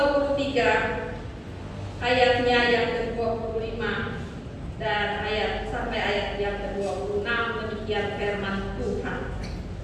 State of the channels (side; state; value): both; identical; correlation 1.00